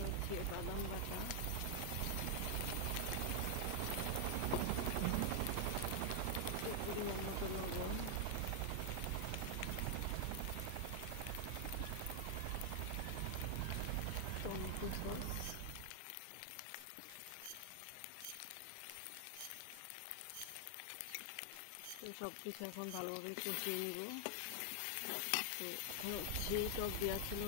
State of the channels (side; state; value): both; different; correlation 0.00